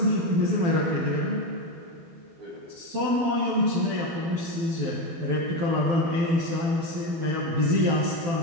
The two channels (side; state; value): left; late; 12 ms